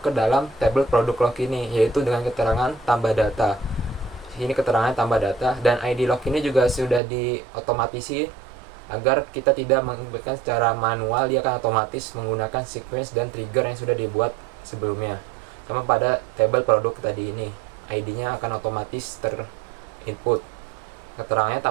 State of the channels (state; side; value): drops out; left; at 7.0 s